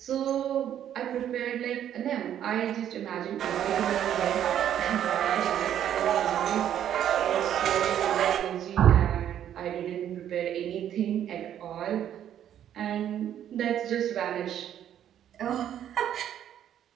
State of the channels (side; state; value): left; quieter; 10.4 dB